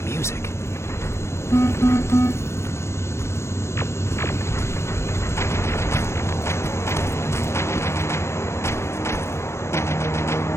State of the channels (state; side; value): late; right; 0.13 ms